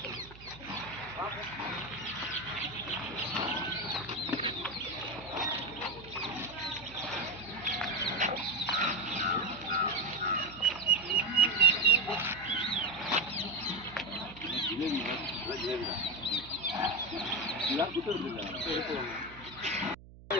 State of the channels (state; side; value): noise; right; hum, 19 dB below the sound